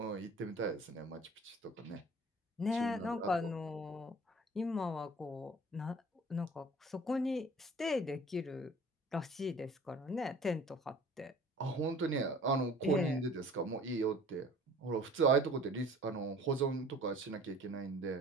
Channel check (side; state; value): both; normal; correlation 0.48